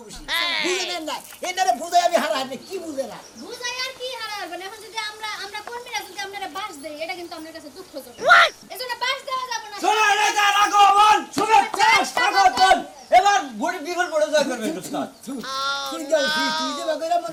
বেশি বুঝে নেন না এনারে বুঝাই আমি হারা হারি কি বুঝে না বুঝাই আর কি হারাবেন এখন যদি আমরা কর্মীরা যদি আপনারা বাস দেই এটা কিন্তু আপনার কাছে দুঃখজনক এজন্য বাস দেওয়া যাবে না শোনা নেতার আগমন শুভেচ্ছা স্বাগতম এবার ভোট বিফল পড়ে জয় করবে উস্তাদ তুই যে বাগেরা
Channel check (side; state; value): both; identical; correlation 1.00